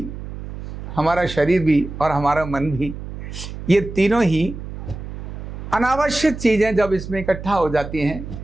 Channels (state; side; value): noise; right; hum, 10 dB below the sound